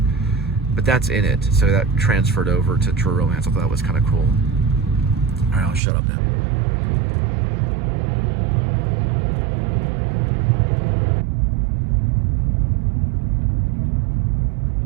But that's in it, so that transferred over to True Romance. I thought that was kind of cool. All right, I'll shut up now.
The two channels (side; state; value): left; drops out; at 5.8 s